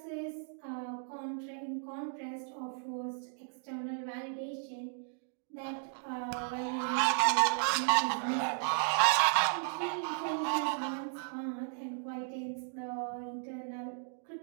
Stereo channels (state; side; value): silent; left; digital silence